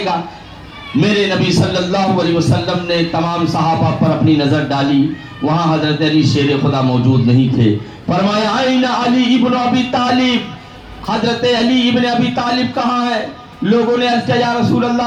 گا. میرے نبی صلی اللہ علیہ وسلم نے تمام صحابہ پر اپنی نظر ڈالی, وہاں حضرت علی شیر خدا موجود نہیں تھے. فرمایا آئین علی ابن ابی طالب, حضرت علی ابن ابی طالب کہاں ہے؟ لوگوں نے عرض کیا یا رسول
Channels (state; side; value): identical; both; correlation 1.00